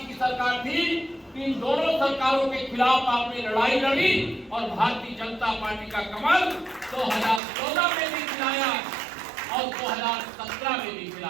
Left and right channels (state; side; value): drops out; left; at 7.4 s